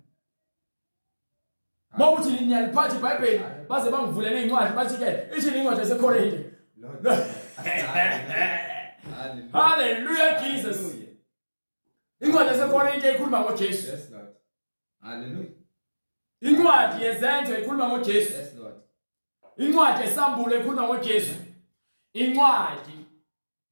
Mawuthi niyaliphatha iBhayibheli baze bangivulele incwadi bathi ke ithi incwadi yaseKorinte. Hallelujah Jesus. Incwadi yaseKorinte ikhuluma ngoJesu. Yes Lord. Hallelujah. Incwadi yezenzo ikhuluma ngoJesu. Yes Lord. Incwadi yesambulo ikhuluma ngoJesu. Incwadi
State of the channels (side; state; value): both; inverted; correlation -1.00